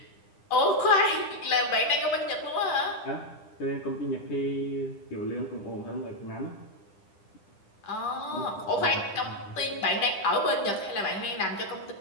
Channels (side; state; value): right; late; 10 ms